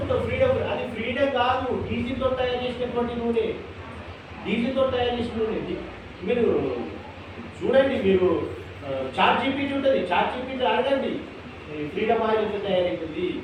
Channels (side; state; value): both; identical; correlation 1.00